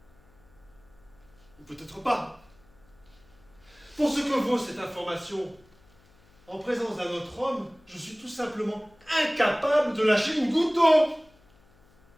Ou peut-être pas. Pour ce que vaut cette information, en présence d'un autre homme, je suis tout simplement incapable de lâcher une goutte d'eau.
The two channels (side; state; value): left; noise; hum, 30 dB below the sound